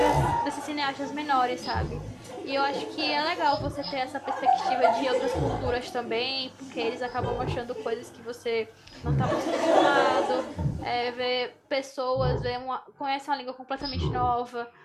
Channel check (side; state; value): both; identical; correlation 1.00